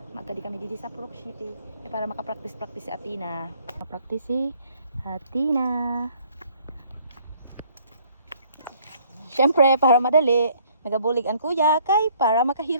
magkadi kami didi sa Purok City para makapractice si Atina. Makapractice si Atina. Syempre para madali, nagabulig ang kuya kay para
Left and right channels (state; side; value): inverted; both; correlation -0.61